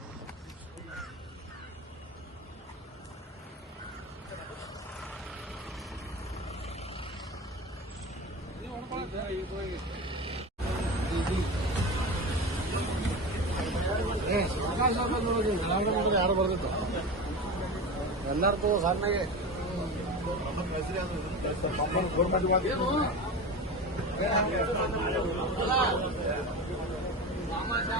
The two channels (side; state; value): both; normal; correlation 0.27